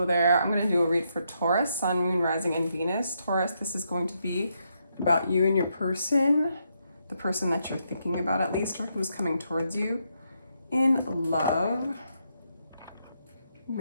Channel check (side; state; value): both; inverted; correlation -0.78